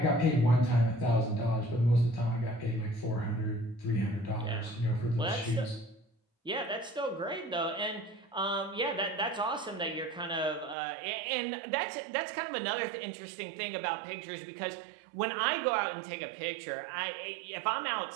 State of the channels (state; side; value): drops out; left; at 10.8 s